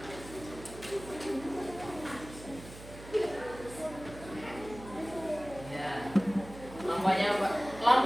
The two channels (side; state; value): right; noise; hum, 15 dB below the sound